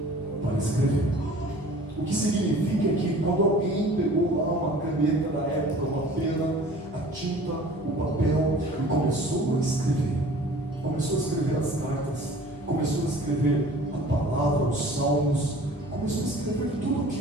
para escrever. O que significa que quando alguém pegou lá uma caneta da época, uma pena, a tinta, o papel e começou a escrever as cartas, começou a escrever a palavra, os salmos, começou a escrever tudo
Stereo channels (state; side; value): normal; both; correlation 0.46